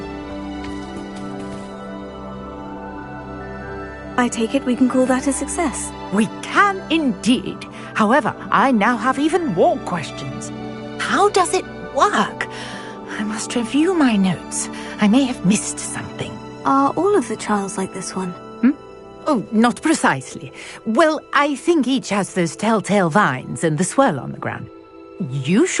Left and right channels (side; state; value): both; identical; correlation 1.00